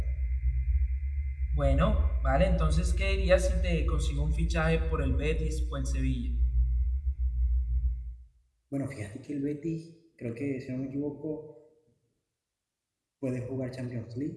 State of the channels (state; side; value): identical; both; correlation 1.00